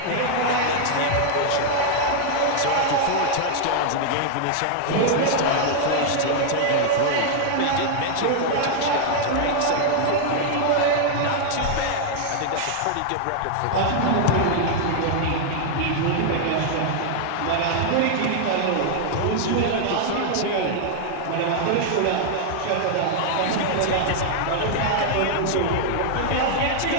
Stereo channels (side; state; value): both; different; correlation -0.01